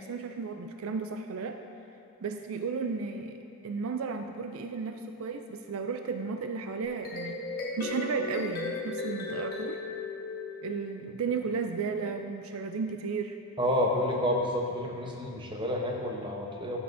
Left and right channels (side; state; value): both; normal; correlation 0.10